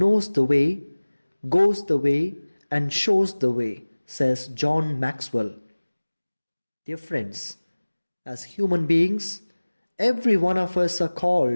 the way, goes the way, and shows the way, says John Maxwell. Dear friends, as human beings, every one of us are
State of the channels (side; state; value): both; inverted; correlation -1.00